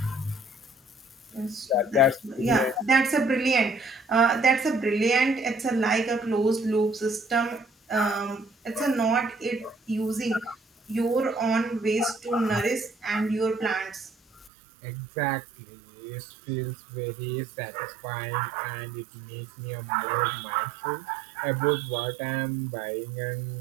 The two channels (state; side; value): drops out; left; at 14.5 s